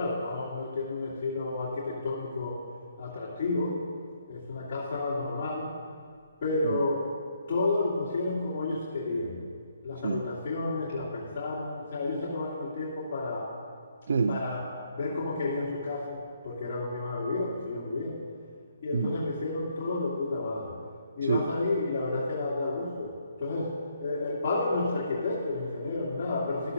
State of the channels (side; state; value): both; inverted; correlation -0.72